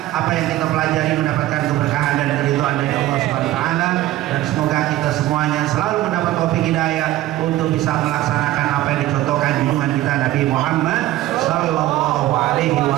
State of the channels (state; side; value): quieter; left; 15.3 dB